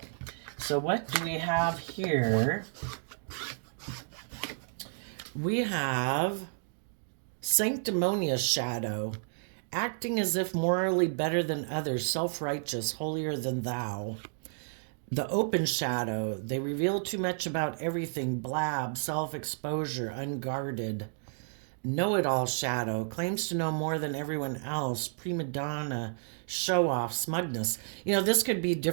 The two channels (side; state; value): left; silent; digital silence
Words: So what do we have here? We have sanctimonious shadow, acting as if morally better than others, self-righteous, holier than thou. The open shadow, they reveal too much about everything, blab, self-exposure, unguarded. Know-it-all shadow, claims to know more than everyone else, prima donna, show-off, smugness. You know, this could be